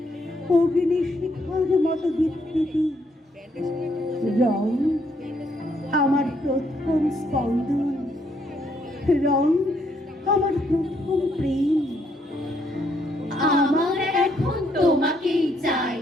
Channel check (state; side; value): normal; both; correlation 0.72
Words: অগ্নি শিখার মতো বিকৃতি। রং আমার প্রথম স্পন্দন, রং আমার প্রথম প্রেম। আমার এখন তোমাকেই চাই,